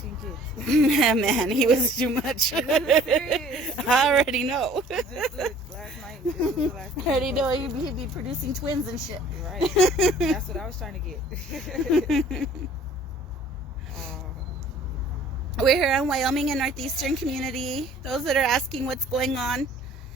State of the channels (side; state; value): both; normal; correlation 0.53